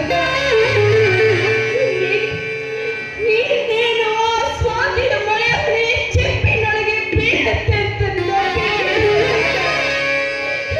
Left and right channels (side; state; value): both; identical; correlation 1.00